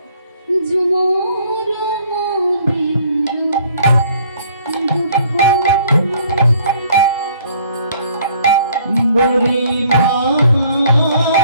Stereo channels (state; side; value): inverted; both; correlation -0.59